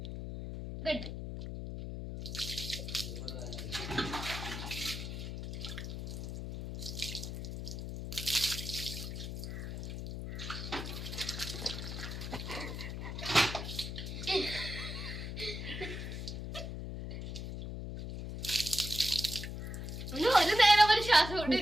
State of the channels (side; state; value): left; noise; hum, 6 dB below the sound